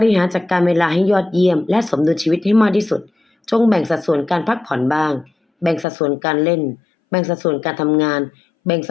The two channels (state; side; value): drops out; right; at 5.9 s